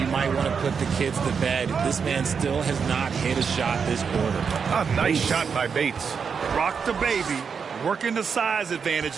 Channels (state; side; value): quieter; left; 6.2 dB